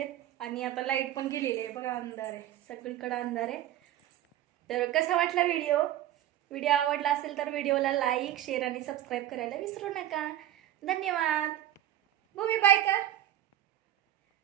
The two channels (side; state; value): left; quieter; 12.8 dB